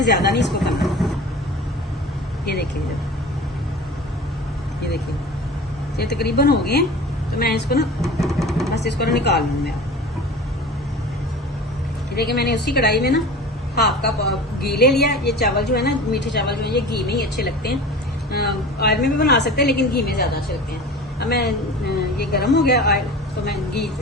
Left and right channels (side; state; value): both; normal; correlation 0.37